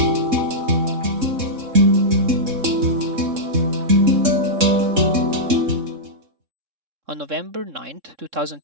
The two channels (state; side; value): late; left; 3.6 ms